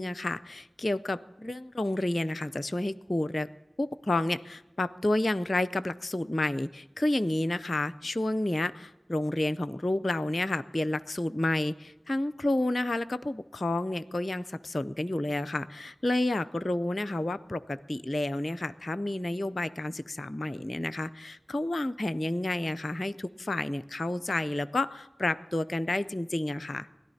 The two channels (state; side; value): normal; both; correlation 0.96